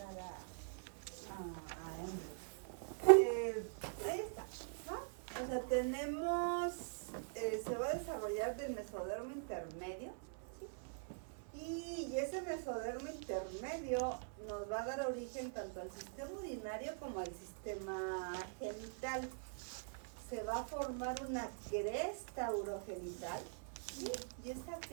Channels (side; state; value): left; silent; digital silence